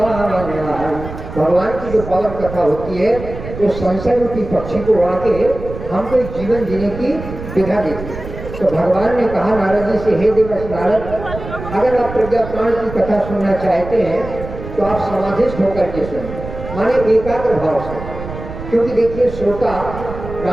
भगवान की जो पावन कथा होती है वो संशय रूपी पक्षी को उड़ा के हमको एक जीवन जीने की विधा देती है। तो भगवान ने कहा नारद जी से, हे देवर्ष नारद, अगर आप प्रज्ञा प्राण की कथा सुनना चाहते हैं तो आप समाधिस्थ होकर के सुनें, माने एकाग्र भाव से। क्योंकि देखिए श्रोता,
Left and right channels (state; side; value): noise; right; rumble, 10 dB below the sound